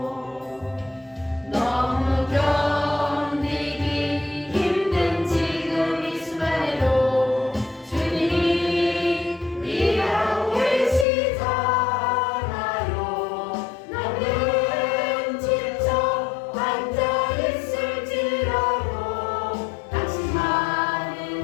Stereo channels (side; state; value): right; drops out; at 11.1 s